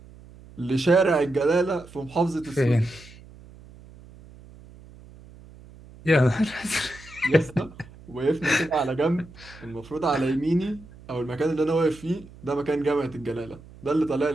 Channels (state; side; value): noise; right; hum, 21 dB below the sound